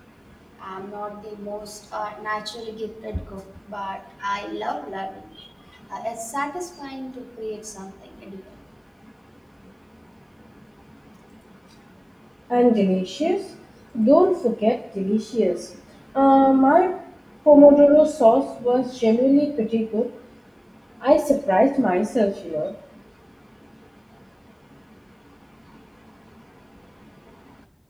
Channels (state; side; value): identical; both; correlation 1.00